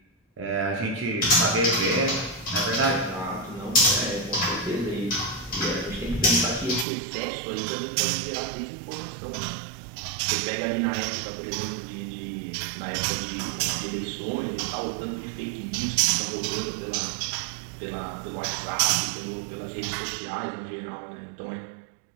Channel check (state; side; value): drops out; left; at 6.9 s